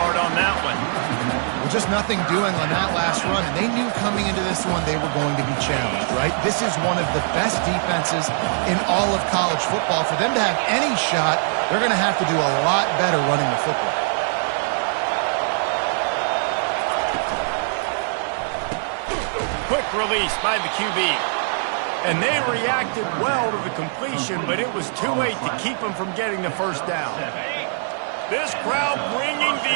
on that one. Well, just nothing doing on that last run, and they knew coming into this one they were going to be challenged, right? This is one of the best defenses in all of college football. For them to have any shot, they're going to have to do a lot better running the football. Quick release by the QB. And they reacted well to the completion, but it was too late to keep them from getting the first down. This crowd bringing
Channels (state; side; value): silent; left; digital silence